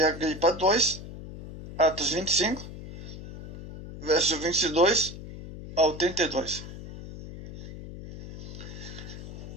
Agripa 2, Atos 25, verso 22 ao 32.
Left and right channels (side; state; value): left; noise; hum, 12 dB below the sound